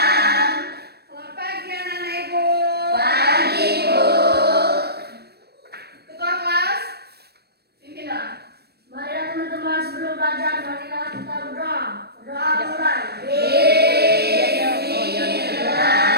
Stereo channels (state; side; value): late; left; 0.47 ms